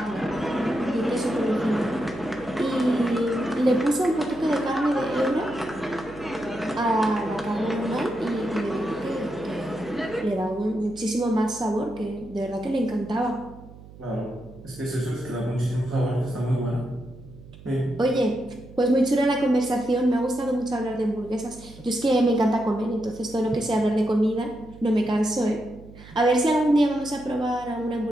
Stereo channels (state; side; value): noise; right; hum, 19 dB below the sound